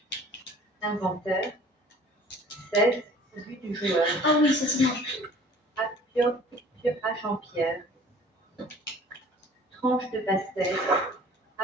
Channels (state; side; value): normal; both; correlation 0.49